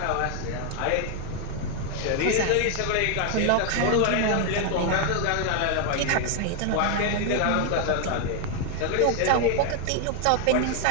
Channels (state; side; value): different; both; correlation 0.00